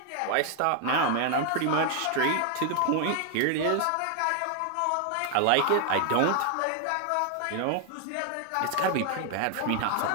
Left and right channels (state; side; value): different; both; correlation 0.00